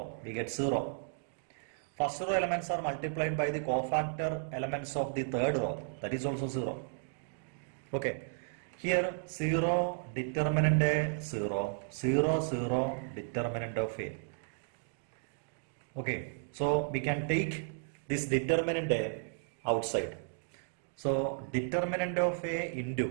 we get 0. First row elements are multiplied by the cofactor elements of the third row, that is also 0. Okay, here 0 determinant A 0, 0 0 determinant of A. Okay, so we can take this determinant A outside. So determinant of A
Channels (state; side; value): silent; left; digital silence